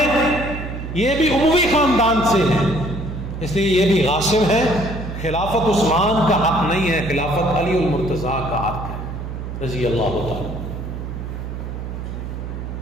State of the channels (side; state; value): right; noise; hum, 7 dB below the sound